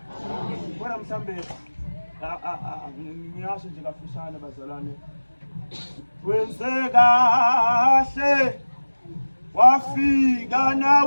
Kodwa mhlambe ngiyasho nje kafushane bazalwane. Wenze kahle wafika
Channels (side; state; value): both; inverted; correlation -1.00